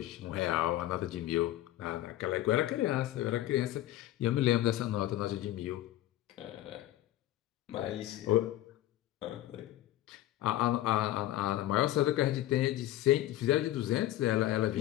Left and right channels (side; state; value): right; quieter; 14.5 dB